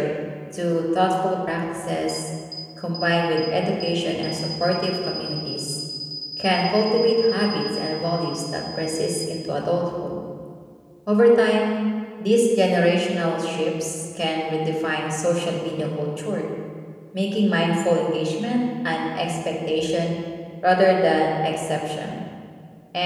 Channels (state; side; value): identical; both; correlation 1.00